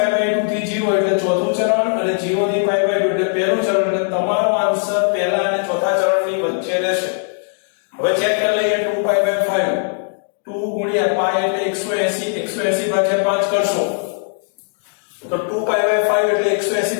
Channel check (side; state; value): right; silent; digital silence